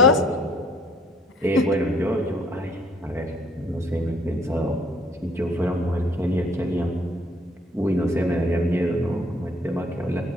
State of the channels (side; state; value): both; normal; correlation 0.60